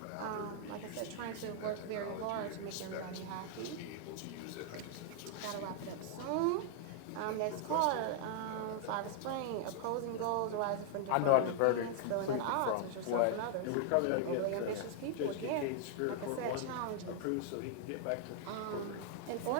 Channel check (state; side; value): different; both; correlation 0.00